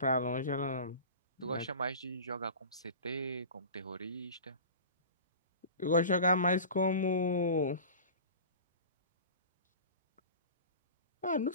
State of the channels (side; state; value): both; inverted; correlation -0.36